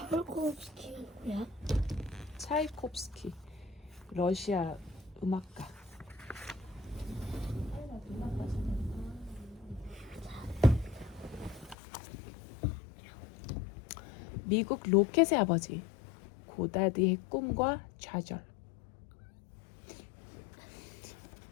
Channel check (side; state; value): right; drops out; at 11.8 s